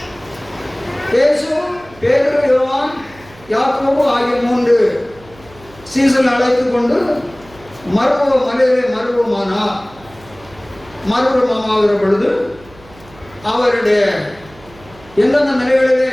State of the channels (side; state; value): right; noise; hum, 24 dB below the sound